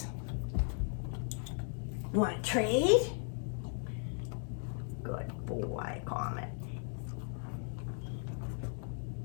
You want to trade? Good boy, Comet.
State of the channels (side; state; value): right; silent; 53 dB below the other